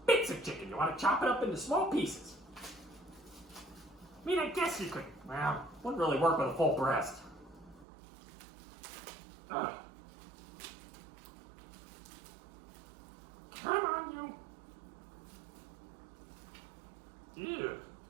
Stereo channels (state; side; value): drops out; left; at 7.9 s